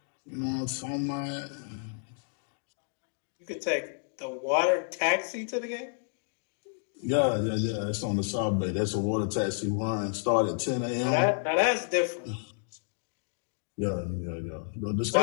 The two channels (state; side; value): silent; right; digital silence